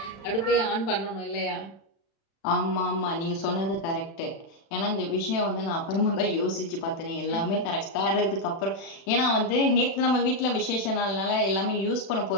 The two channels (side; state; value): right; late; 36 ms